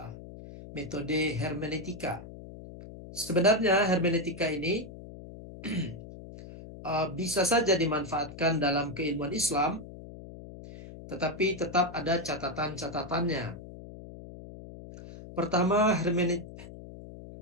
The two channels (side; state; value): left; noise; hum, 14 dB below the sound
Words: metode hermeneutika. Sebenarnya hermeneutika ini bisa saja dimanfaatkan dalam keilmuan Islam, tetapi tetap ada catatan-catatannya. Pertama,